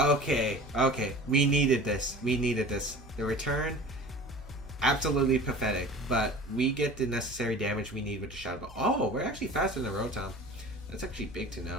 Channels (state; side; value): normal; both; correlation 0.40